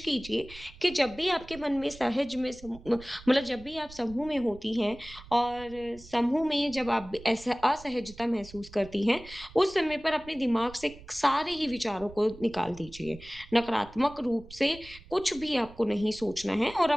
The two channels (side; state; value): right; noise; rumble, 19 dB below the sound